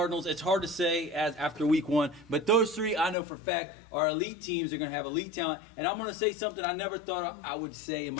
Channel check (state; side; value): drops out; right; at 3.2 s